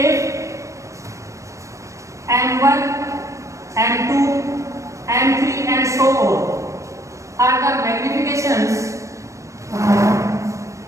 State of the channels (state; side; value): late; left; 0.15 ms